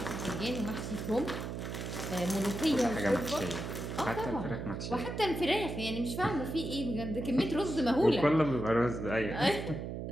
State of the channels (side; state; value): right; noise; hum, 5 dB below the sound